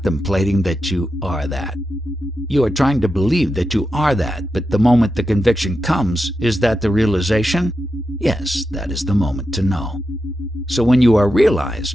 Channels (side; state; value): both; normal; correlation 0.88